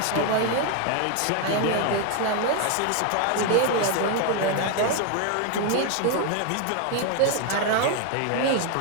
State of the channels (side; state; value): both; different; correlation 0.01